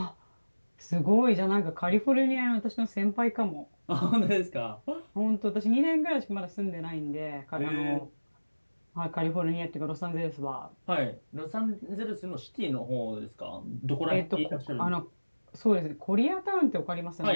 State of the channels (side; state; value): both; inverted; correlation -1.00